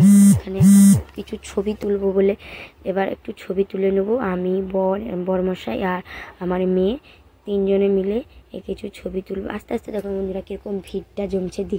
এখানে কিছু ছবি তুলবো বলে এবার একটু ছবি তুলে নেবো। আমি বরমশাই আর আমার মেয়ে তিনজনে মিলে কিছু ছবি তুলবো। আস্তে আস্তে দেখুন বন্ধুরা কীরকম ভিড়টা জমছে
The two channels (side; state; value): both; identical; correlation 1.00